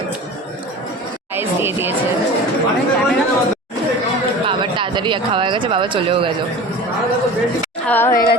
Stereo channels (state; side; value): normal; both; correlation 0.36